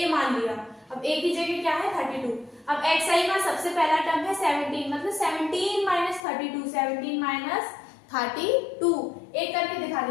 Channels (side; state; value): right; drops out; at 6.2 s